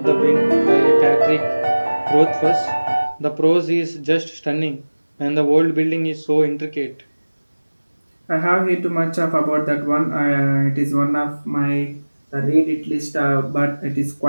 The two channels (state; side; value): inverted; both; correlation -1.00